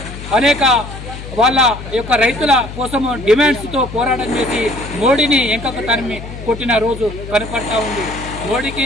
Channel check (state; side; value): noise; left; hum, 11 dB below the sound